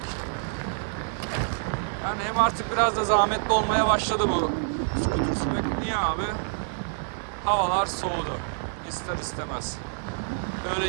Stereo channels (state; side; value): silent; left; digital silence